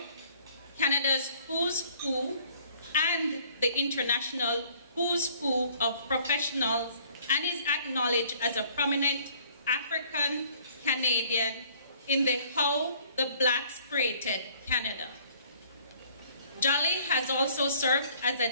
Canada's Who's Who, and the International Who's Who of Professionals, and is acknowledged as a prominent African Canadian in the How the Blacks Created Canada. Jolly has also served as a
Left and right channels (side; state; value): both; inverted; correlation -0.57